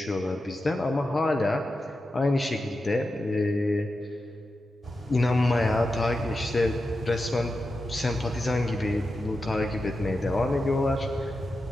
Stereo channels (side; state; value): both; normal; correlation 0.90